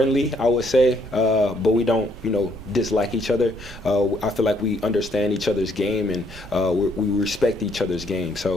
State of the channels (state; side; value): normal; both; correlation 0.68